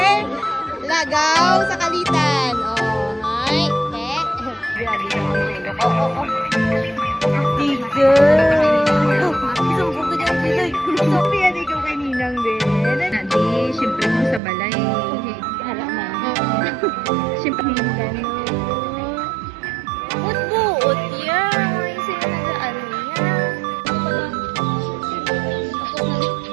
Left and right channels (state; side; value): drops out; left; at 14.4 s